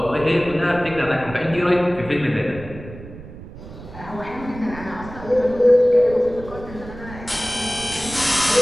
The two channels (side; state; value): right; noise; rumble, 15 dB below the sound